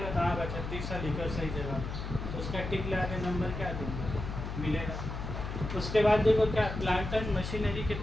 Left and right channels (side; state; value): left; noise; hum, 6 dB below the sound